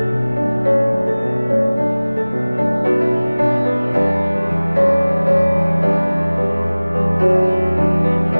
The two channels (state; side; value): inverted; both; correlation -0.99